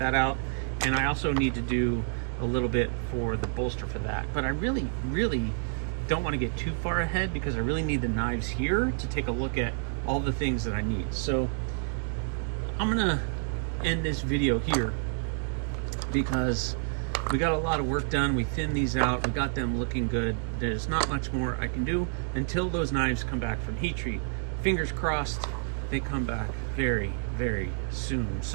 out. And I also need to do a little bit for the bolster for that. But I really don't want to get too far ahead, because I really need the knives here to take a look at all the things that I need. So I'm gonna end this video here, because we got a lot of work done. We thinned these out, we got them looking good. There's not much more I can do until those knives come back from heat treat. Fingers crossed they come back very soon.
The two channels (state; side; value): silent; left; digital silence